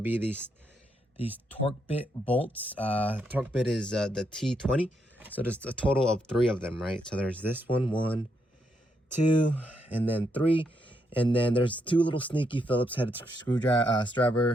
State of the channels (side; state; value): both; normal; correlation 0.79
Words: these torque bit bolts. Torque bit is the T20. So there's a total of 3 of them, right? So there's this one, 2, and then 3. And then there's 2 little sneaky Phillips headed screws,